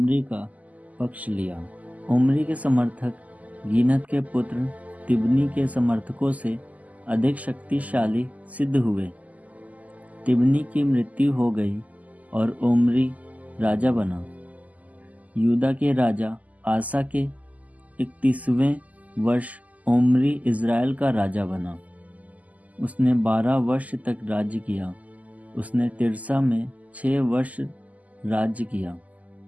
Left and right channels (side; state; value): left; late; 0.076 ms